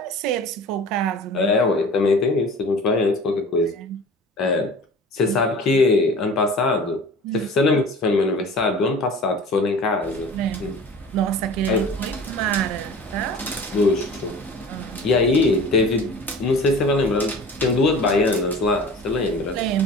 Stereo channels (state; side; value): normal; both; correlation 0.41